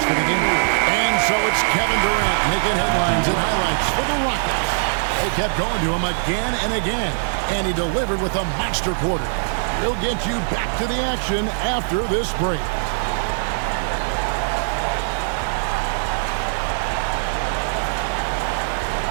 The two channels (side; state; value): left; silent; digital silence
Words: for the game. And so it's Kevin Durant making headlines and highlights for the Rockets. They kept going to him again and again, and he delivered with a monster quarter. We'll get you back to the action after this break.